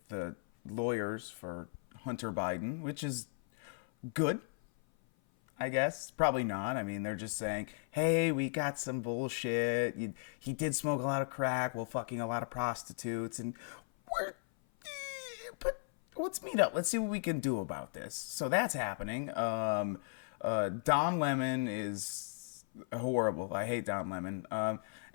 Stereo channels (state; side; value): silent; right; 54 dB below the other